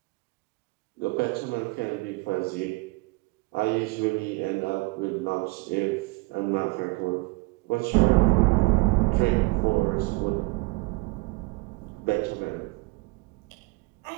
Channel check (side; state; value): left; quieter; 25.3 dB